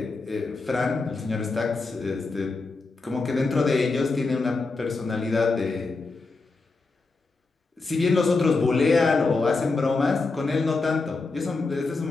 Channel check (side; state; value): right; quieter; 3.8 dB